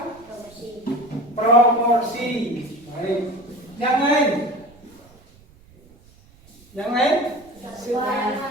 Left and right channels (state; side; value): noise; right; rumble, 27 dB below the sound